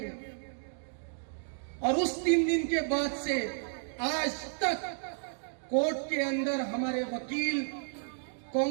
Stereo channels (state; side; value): silent; left; digital silence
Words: और उस 3 दिन के बाद से आज तक कोर्ट के अंदर हमारे वकील